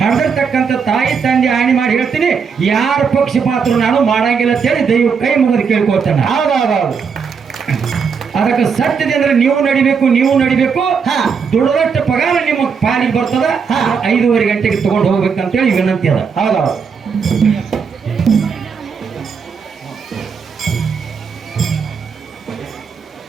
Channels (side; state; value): left; quieter; 6.0 dB